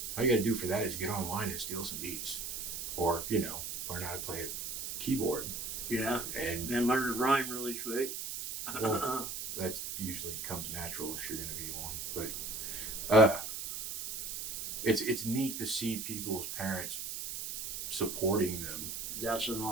all you got to do for that is get online and steal some beats or, learn how to play a keyboard. Yeah. And And learn to rhyme really quick. Well, that usually comes natural if you're going to be one. But it's neat to see people's parents supporting them That's an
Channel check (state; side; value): noise; right; hiss, 5 dB below the sound